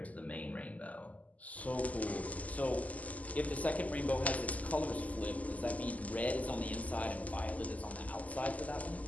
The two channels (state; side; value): late; right; 0.074 ms